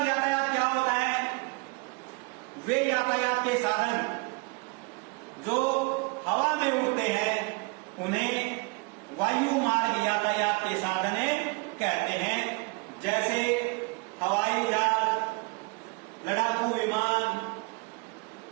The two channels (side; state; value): left; quieter; 29.0 dB